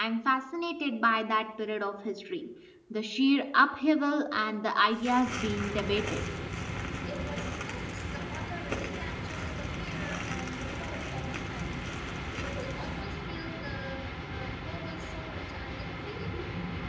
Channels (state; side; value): identical; both; correlation 1.00